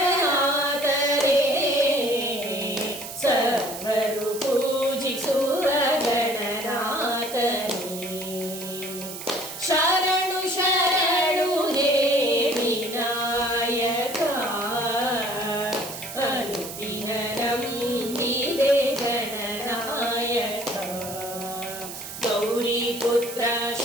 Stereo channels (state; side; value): noise; right; hiss, 10 dB below the sound